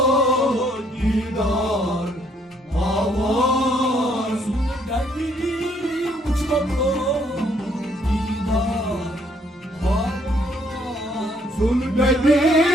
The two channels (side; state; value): both; normal; correlation 0.67